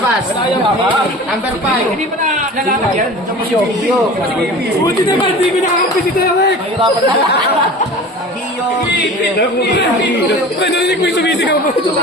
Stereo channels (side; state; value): both; normal; correlation 0.38